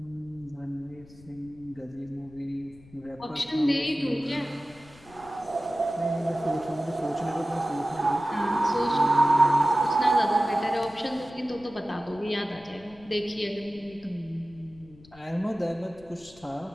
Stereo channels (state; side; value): noise; left; rumble, 23 dB below the sound